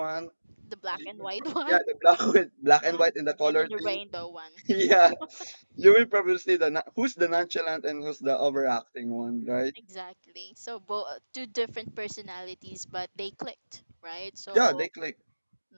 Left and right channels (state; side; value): inverted; both; correlation -1.00